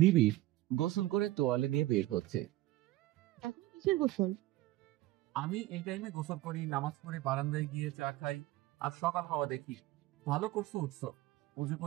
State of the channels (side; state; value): left; quieter; 16.9 dB